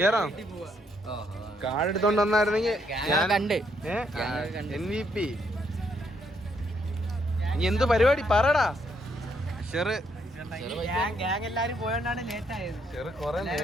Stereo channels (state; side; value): normal; both; correlation 0.73